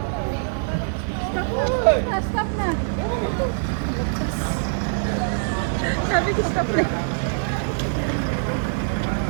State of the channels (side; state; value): left; silent; digital silence